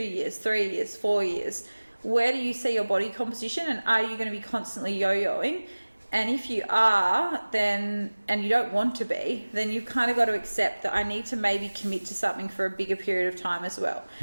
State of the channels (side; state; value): both; inverted; correlation -1.00